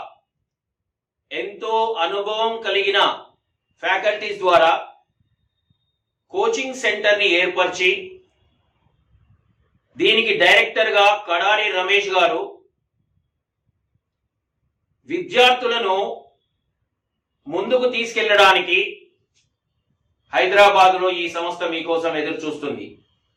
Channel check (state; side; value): identical; both; correlation 1.00